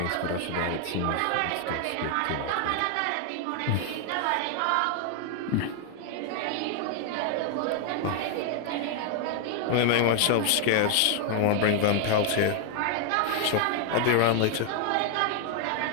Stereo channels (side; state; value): both; different; correlation 0.00